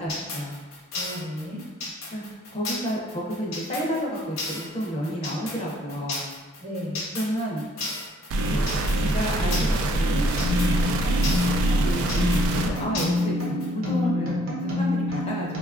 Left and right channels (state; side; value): normal; both; correlation 0.64